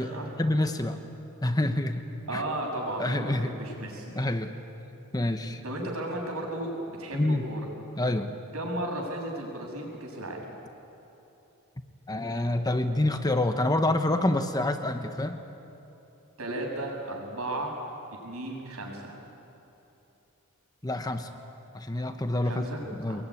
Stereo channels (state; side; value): normal; both; correlation 0.67